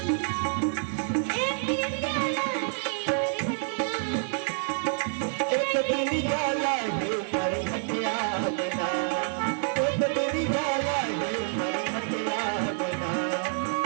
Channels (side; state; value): left; silent; digital silence